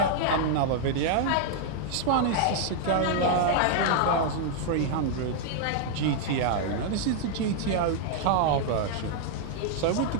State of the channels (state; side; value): different; both; correlation -0.01